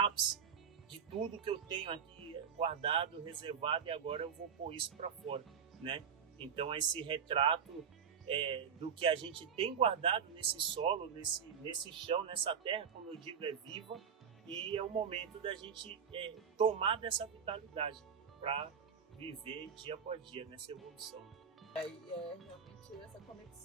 de tudo que eu tenho aqui guardado, reservado, e agora eu vou pôr isso para fora, né? Então, esse retrato do que a gente tem guardado nesse solo, nesse chão, nessa terra, como eu digo, é viva, e é o momento da gente tomar dessa vitalidade para viver dia após dia nessa evolução. Aí realmente essa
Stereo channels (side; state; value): left; quieter; 7.0 dB